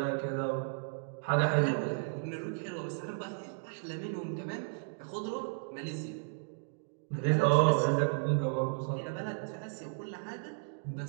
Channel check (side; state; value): left; silent; digital silence